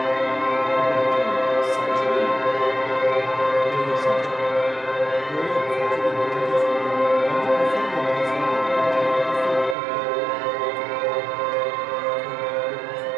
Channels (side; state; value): left; drops out; at 9.8 s